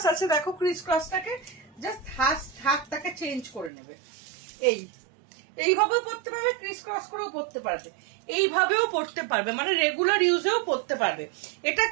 আছে, দেখো ক্রিস ক্রসটাকে জাস্ট হাতটাকে চেঞ্জ করে নেবে, এইভাবেও পড়তে পারবে, ক্রিস ক্রস করেও পড়তে পারবে, এইভাবেও পড়তে পারবে, মানে রেগুলার ইউজেও পড়তে পারবে। এটা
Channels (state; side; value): drops out; left; at 3.7 s